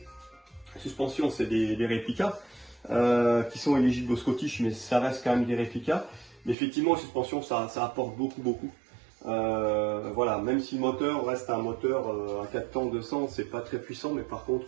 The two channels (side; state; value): left; drops out; at 6.6 s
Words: c'est des réplicas qui sont éligibles au Scottish, mais ça reste quand même des réplicas. Mais effectivement, suspension, ça apporte beaucoup. Voilà, même si le moteur reste un moteur à 4 temps 200, c'est pas très puissant, mais par